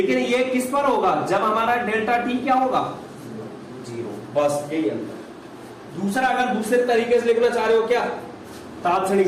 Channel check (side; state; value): both; identical; correlation 1.00